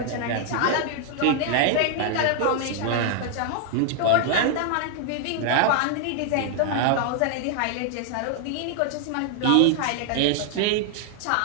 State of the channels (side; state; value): both; different; correlation 0.00